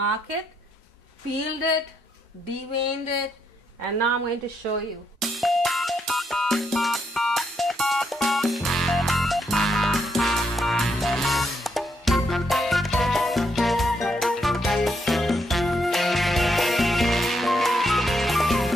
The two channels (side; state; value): both; normal; correlation 0.77